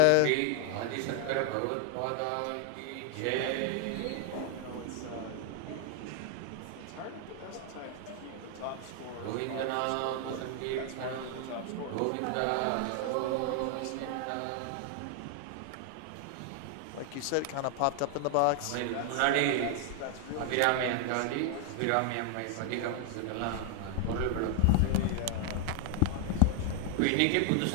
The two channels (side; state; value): both; different; correlation 0.00